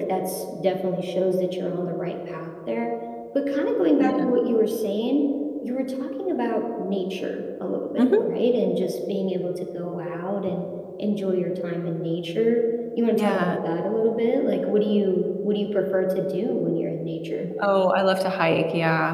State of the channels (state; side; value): identical; both; correlation 1.00